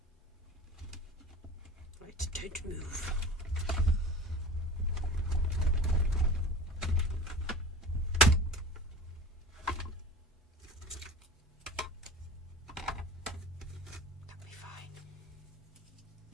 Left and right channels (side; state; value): both; normal; correlation 0.37